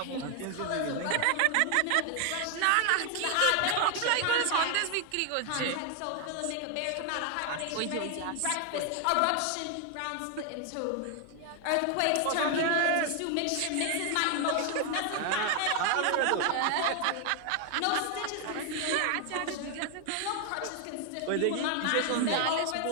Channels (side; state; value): both; different; correlation 0.00